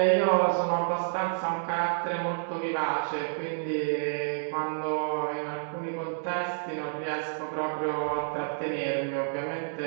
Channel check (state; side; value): silent; left; 58 dB below the other